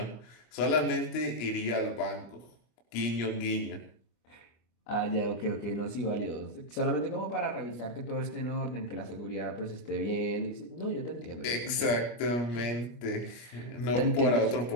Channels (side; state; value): right; late; 25 ms